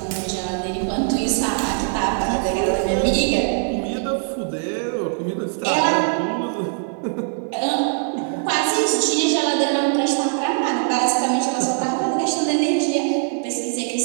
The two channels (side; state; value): left; silent; digital silence